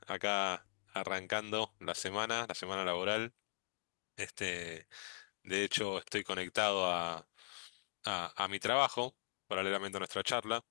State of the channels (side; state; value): right; silent; digital silence